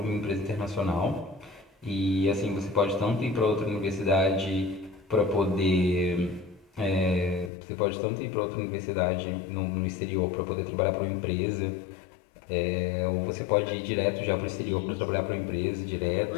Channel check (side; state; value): right; drops out; at 7.5 s